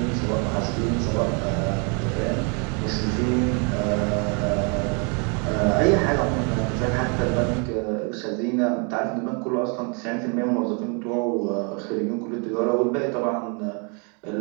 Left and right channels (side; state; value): left; quieter; 35.4 dB